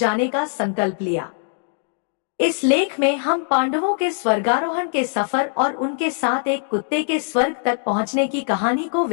का संकल्प लिया। इस लेख में हम पांडवों के स्वर्गारोहण के सफर और उनके साथ एक कुत्ते के स्वर्ग तक पहुंचने की कहानी को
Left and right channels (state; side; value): silent; right; digital silence